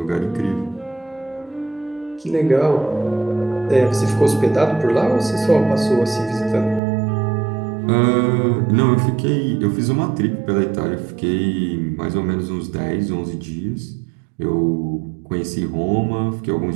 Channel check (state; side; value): drops out; left; at 6.8 s